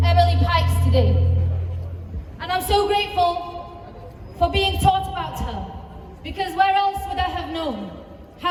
Emily Pikes today. And I'm so grateful for being taught about her, because where else would I have known?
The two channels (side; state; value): both; identical; correlation 1.00